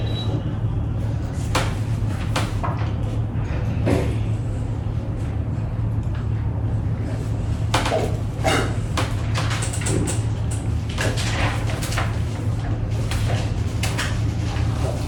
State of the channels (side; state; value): both; identical; correlation 1.00